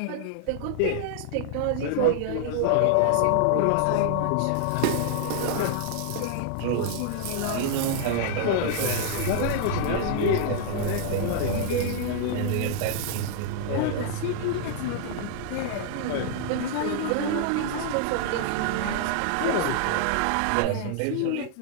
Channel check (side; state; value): both; different; correlation -0.01